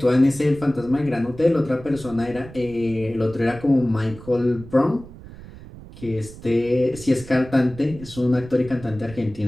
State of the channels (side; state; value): right; noise; rumble, 17 dB below the sound